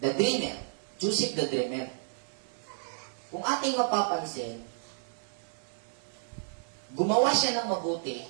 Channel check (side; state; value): left; silent; digital silence